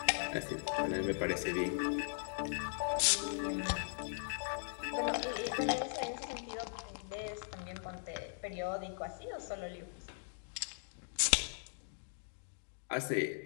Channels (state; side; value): silent; right; digital silence